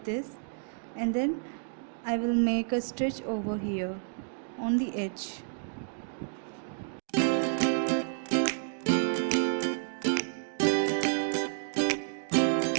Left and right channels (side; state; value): left; silent; digital silence